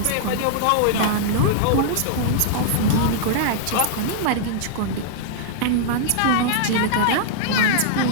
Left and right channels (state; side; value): different; both; correlation -0.01